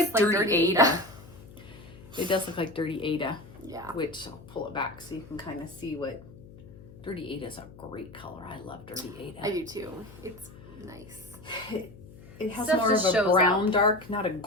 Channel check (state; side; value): noise; left; hum, 19 dB below the sound